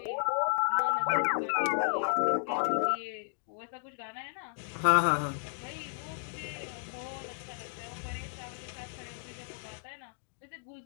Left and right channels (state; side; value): silent; right; digital silence